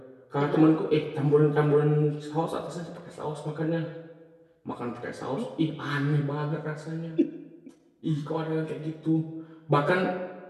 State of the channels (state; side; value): identical; both; correlation 1.00